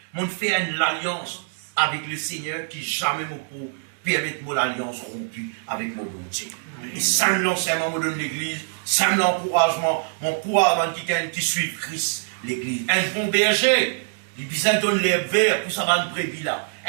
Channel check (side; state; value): left; silent; digital silence